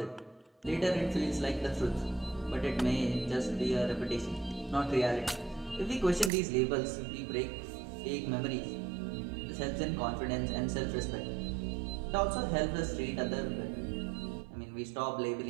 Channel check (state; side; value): drops out; left; at 6.3 s